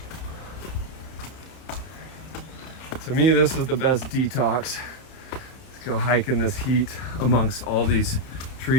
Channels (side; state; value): right; late; 31 ms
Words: To me, this is the best detox. Let's go hike in this heat amongst all these